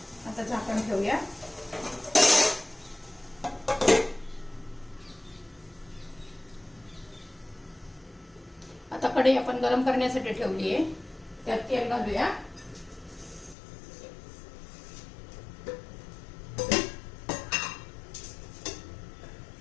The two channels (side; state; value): right; drops out; at 13.6 s